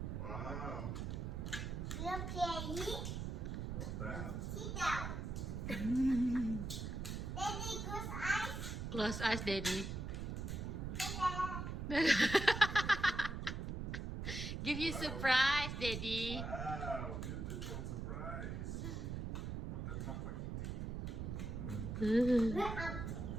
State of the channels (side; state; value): right; noise; rumble, 4 dB below the sound